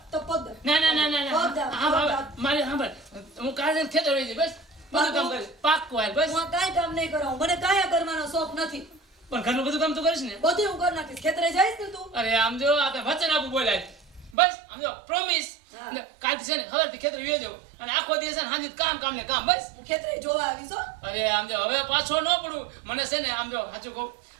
તો પગ દા. ના ના ના ના પગ દા, હા પગ બાબા દા. મારે સાંભળ હું કાલે જઈને ખેતર વહી જઈશ બસ બધું કામ કરીશ પાક્કું હાલ બસ હું આ કાંઈ કામ નહીં કરાવું, મને કાંઈ કરવાનો શોખ નથી. પણ ઘરનું બધું કામ તું કરીશ ને. બધું હું કરી નાખીશ. ખેતરે જઈશ ને તું? અરે આમ જો આ તો વચન આપું બોલાય બસ આમ જો પ્રોમિસ હા. કાલથી છે ને ખબરથી ખેતર વહી જાઉં અને આખો દિવસ છે ને સાંજે કામ ને કામ બસ. હું ખેતરે જોવા આવીશ હો. અરે આમ જો હવે પાછો ન પડું મને છે ને આમ જો સાચું કહું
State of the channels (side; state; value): left; drops out; at 14.4 s